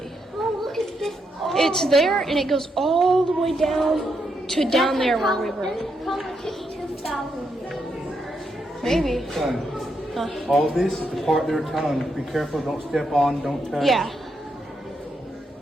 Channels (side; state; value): both; normal; correlation 0.80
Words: Oh, look at this. It's there and it goes all the way down to down there where we were. This is probably 2,000 years. Maybe. Son, all this is the part they're telling you, be careful, don't step on, don't touch. Yeah.